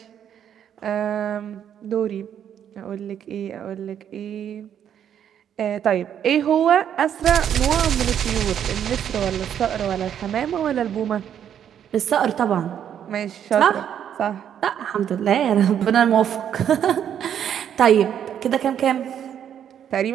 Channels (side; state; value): left; quieter; 9.3 dB